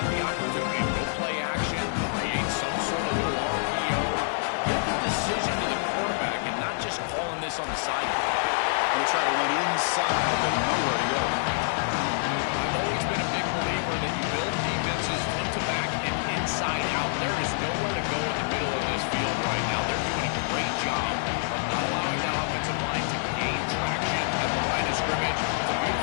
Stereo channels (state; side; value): silent; right; 60 dB below the other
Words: the opportunity to go play action, create some sort of little RPO, give the decision to the quarterback, and not just calling this on the sideline. They'll try to run inside, but nowhere to go. I've always been a big believer that you build defenses front to back and inside out. There is nowhere to go in the middle of this field right now. They're doing a great job of not allowing that offensive line to gain traction at the line of scrimmage